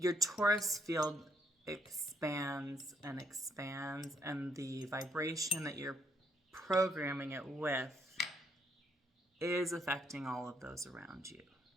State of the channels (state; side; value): normal; both; correlation 0.71